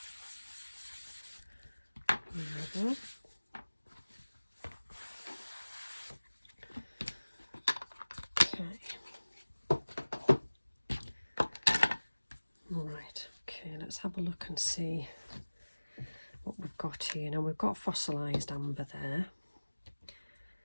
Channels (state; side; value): inverted; both; correlation -1.00